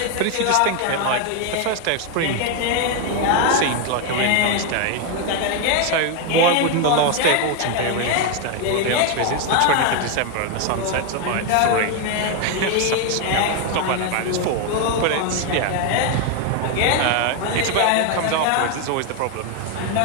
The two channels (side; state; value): both; different; correlation 0.01